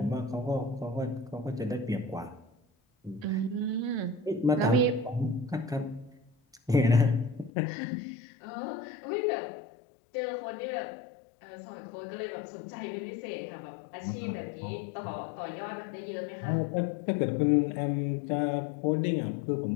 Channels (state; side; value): drops out; right; at 7.5 s